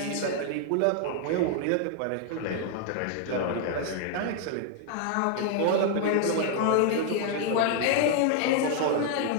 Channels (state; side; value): different; both; correlation 0.00